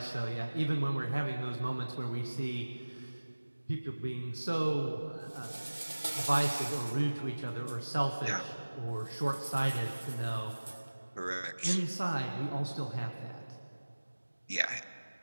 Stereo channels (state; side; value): inverted; both; correlation -1.00